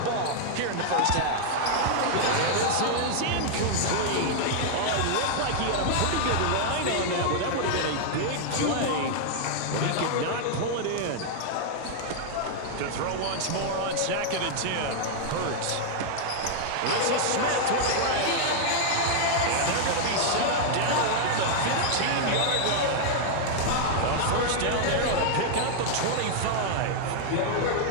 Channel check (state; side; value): different; both; correlation 0.00